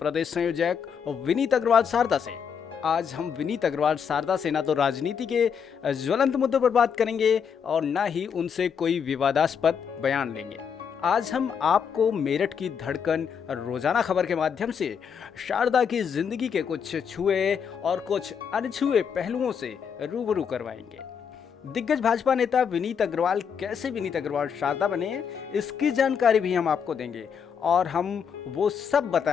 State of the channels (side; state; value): right; quieter; 7.1 dB